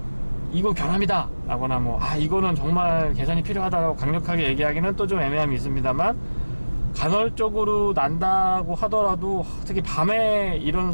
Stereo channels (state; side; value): inverted; both; correlation -1.00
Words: 이건 결함이다 라거나 이거는 정말 개선이 필요하다라고 강력하게 얘기하기는 또 좀 애매함이 있습니다만, 간헐적으로 난다고 하더라도 특히 밤에 이런